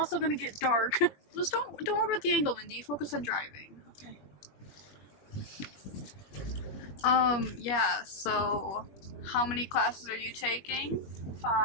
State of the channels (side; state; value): right; late; 21 ms